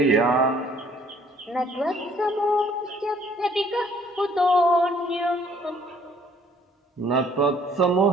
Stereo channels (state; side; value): normal; both; correlation 0.59